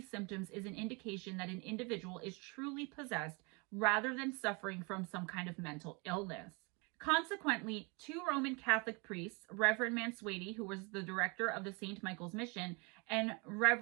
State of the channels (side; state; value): left; quieter; 30.5 dB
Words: symptoms is an indication that an individual is truly possessed rather than suffering from some kind of mental illness. Consequently, 2 Roman Catholic priests, Reverend Mansueti, who was the director of the St. Michael's Mission, and